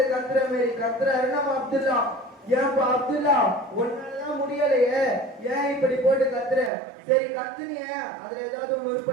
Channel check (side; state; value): left; drops out; at 6.7 s